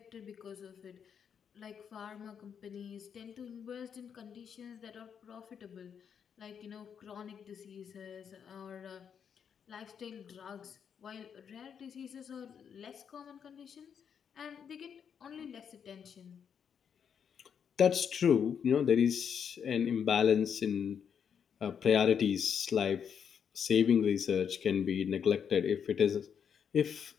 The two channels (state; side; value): quieter; right; 7.5 dB